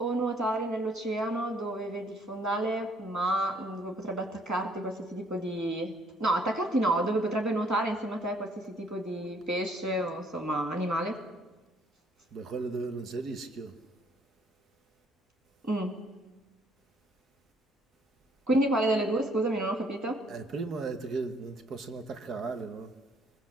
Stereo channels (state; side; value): normal; both; correlation 0.64